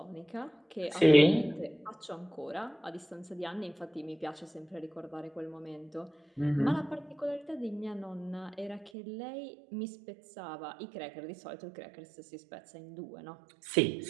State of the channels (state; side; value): drops out; left; at 8.9 s